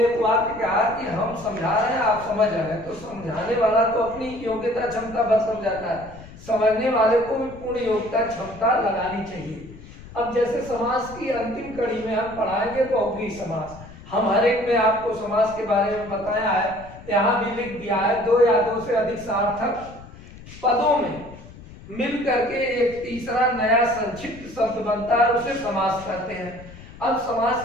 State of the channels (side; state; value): left; noise; rumble, 17 dB below the sound